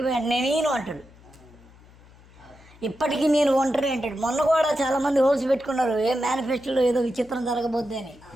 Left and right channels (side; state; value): left; noise; hum, 25 dB below the sound